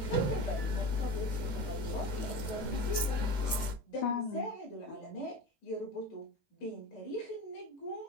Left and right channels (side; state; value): right; late; 18 ms